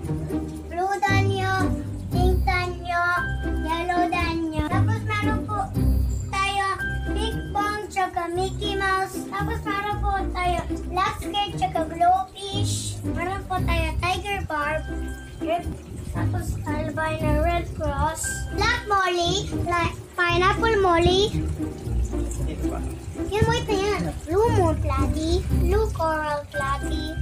blue danyo, pink danyo, yellow danyo. Tapos meron po tayo Big Bang, tsaka Mickey Mouse. Tapos meron po tayo black skirt, tsaka glowfish. Meron po tayo tiger barb, tapos albino red cross, black molly, pineapple molly. Yan mo ito yan. Blue moon platy, blue coral platy.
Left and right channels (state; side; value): identical; both; correlation 1.00